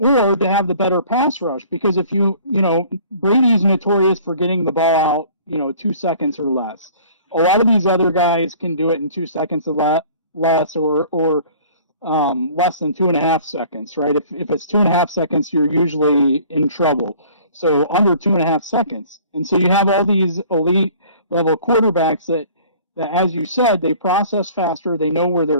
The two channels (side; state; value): both; inverted; correlation -0.50